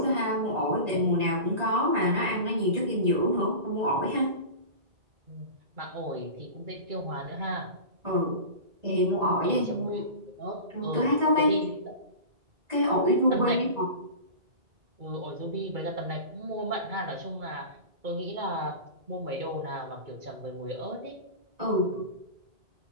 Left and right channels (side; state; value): left; late; 2.3 ms